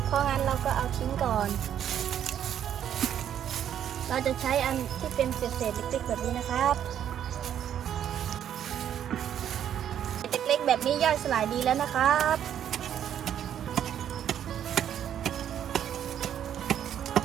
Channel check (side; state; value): left; quieter; 9.8 dB